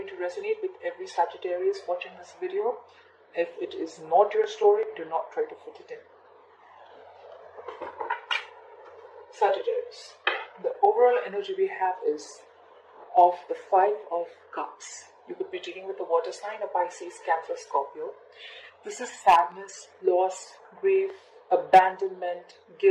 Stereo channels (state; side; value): identical; both; correlation 1.00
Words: to resonate with every Sagittarius watching this video. If it is not your story, do not try to fit it in. Sagittarius. The overall energy we have is of the Five of Cups. You could be dealing with a water sign, a Pisces, Cancer, Scorpio. This is sadness, loss, grief, abandonment,